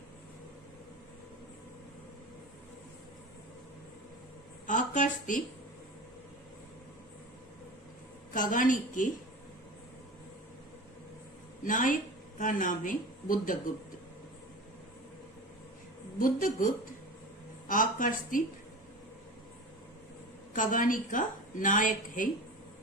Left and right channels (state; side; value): normal; both; correlation 0.33